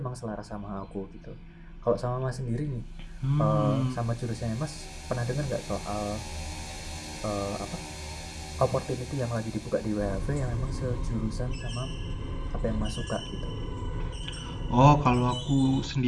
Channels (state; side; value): identical; both; correlation 1.00